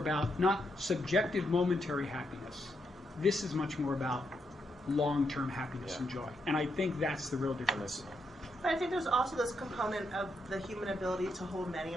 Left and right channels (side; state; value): both; normal; correlation 0.80